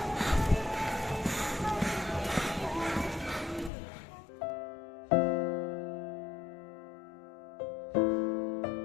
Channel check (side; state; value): right; drops out; at 3.7 s